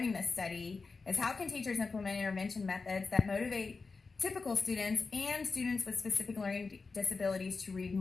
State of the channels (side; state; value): right; quieter; 4.3 dB